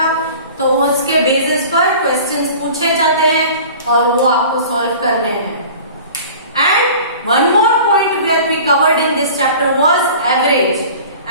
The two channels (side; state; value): both; inverted; correlation -0.42